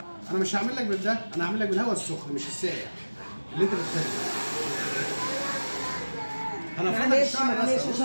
انا مش هعمل لك بالده. انا هعمل لك بالهواء السخن مش الساقع اللي انت بتحبه. انا فاتك معلش الشعر بس معلش أهو.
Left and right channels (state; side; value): inverted; both; correlation -1.00